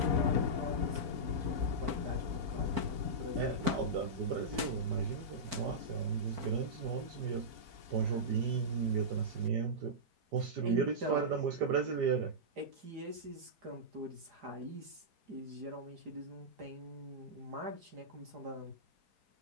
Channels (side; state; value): left; late; 4.5 ms